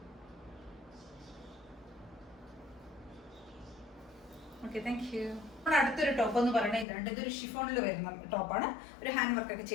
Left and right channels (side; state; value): right; drops out; at 6.9 s